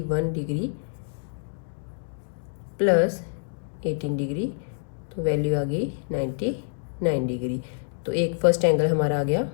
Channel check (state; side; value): silent; right; digital silence